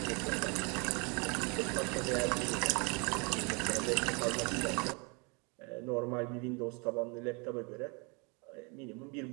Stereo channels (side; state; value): left; quieter; 31.9 dB